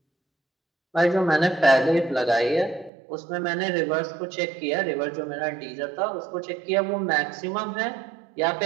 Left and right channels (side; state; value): left; drops out; at 2.9 s